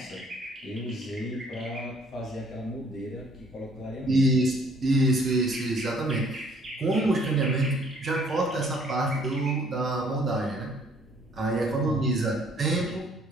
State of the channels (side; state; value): both; normal; correlation 0.60